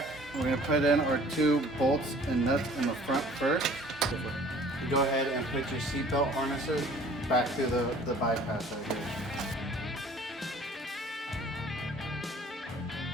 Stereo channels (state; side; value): normal; both; correlation 0.52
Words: We're going to put in our 2 bolts and nuts in the front first. Go ahead and put your seatbelt harnesses back through the bypass right here.